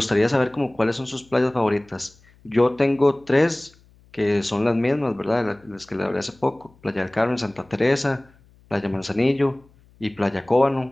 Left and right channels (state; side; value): noise; left; hum, 29 dB below the sound